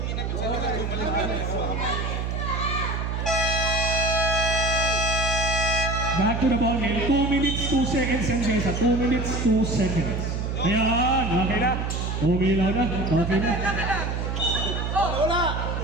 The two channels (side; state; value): right; noise; hum, 2 dB below the sound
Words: Back to the ball game. 2 minutes, 2 seconds and Jessa. 2 minutes, 2 seconds. Ayan, okay na. Umilaw na. Okay na. wala.